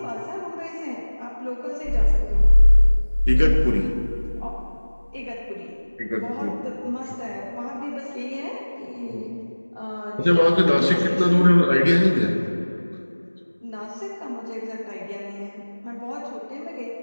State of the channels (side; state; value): both; inverted; correlation -1.00